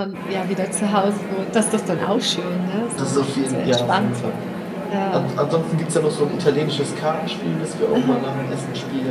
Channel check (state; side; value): identical; both; correlation 1.00